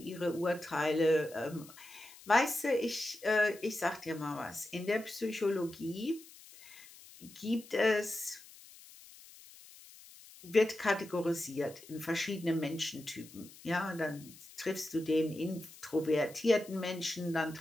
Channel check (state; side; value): noise; left; hiss, 20 dB below the sound